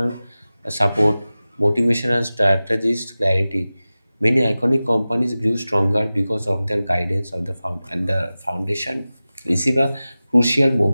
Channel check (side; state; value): both; inverted; correlation -0.96